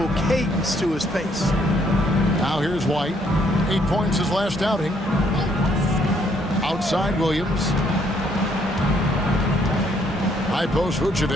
cadence to his pace. Now here's White. 8 points his last outing. Outside Williams. High post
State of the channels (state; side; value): normal; both; correlation 0.68